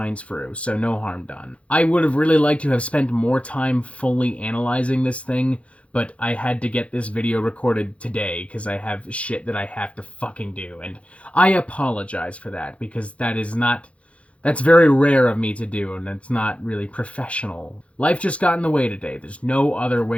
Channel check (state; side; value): late; right; 0.062 ms